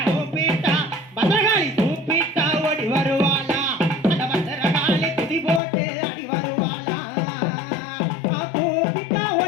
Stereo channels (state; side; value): drops out; right; at 5.6 s